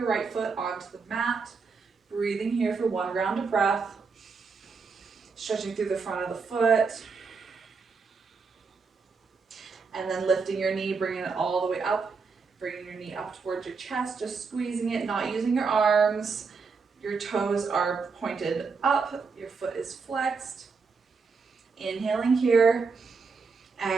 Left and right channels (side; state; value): left; quieter; 4.9 dB